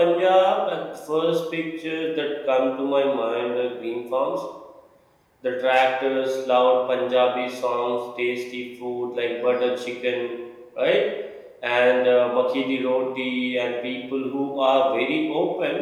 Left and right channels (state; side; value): identical; both; correlation 1.00